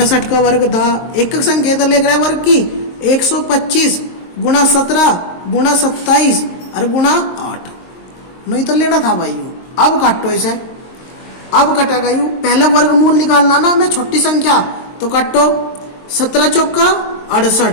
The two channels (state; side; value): late; right; 23 ms